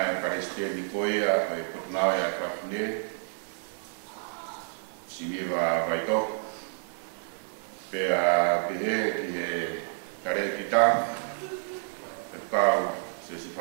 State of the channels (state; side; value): silent; left; 58 dB below the other